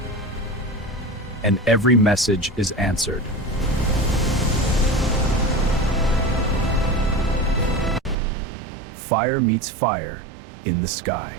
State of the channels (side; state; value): left; drops out; at 8.2 s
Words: And every message is answered. Fire meets fire in the sky.